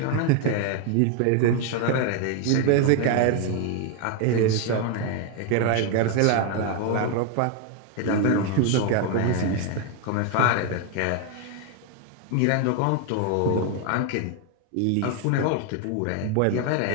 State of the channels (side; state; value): both; different; correlation 0.01